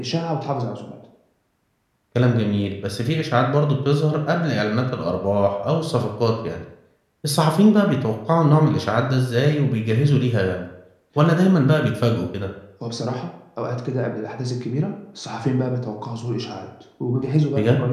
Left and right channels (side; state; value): both; identical; correlation 1.00